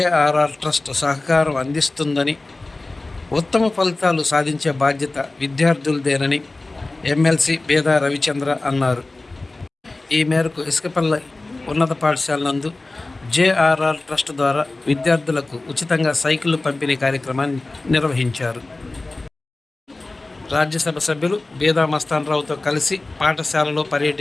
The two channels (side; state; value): right; quieter; 3.1 dB